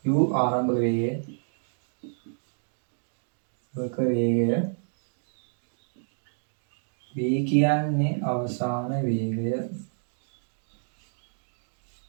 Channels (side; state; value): left; silent; digital silence